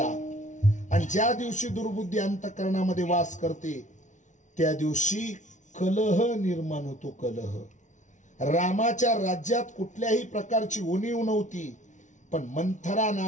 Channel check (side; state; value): right; late; 0.36 ms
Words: आणि ज्या दिवशी दुर्बुद्धी अंतकरणामध्ये वास करते त्या दिवशी कलह निर्माण होतो। कलह रामाच्या राज्यात कुठल्याही प्रकारची उणीव नव्हती, पण मंथरा